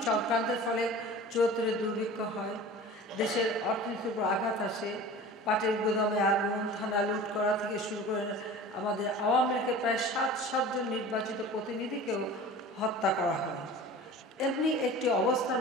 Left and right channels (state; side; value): normal; both; correlation 0.39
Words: চক্রান্তের ফলে ৭৪-এ দুর্ভিক্ষ হয়, দেশের অর্থনীতির উপর আঘাত আসে, পাটের গুদামে আগুন, থানা লুট করা থেকে শুরু করে আমাদের আওয়ামী লীগের প্রায় ৭০ জন নির্বাচিত প্রতিনিধিকেও হত্যা করা হয়। এমনি একটি অবস্থার